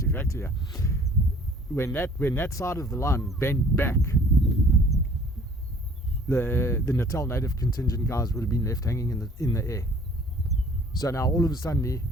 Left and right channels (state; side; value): normal; both; correlation 0.54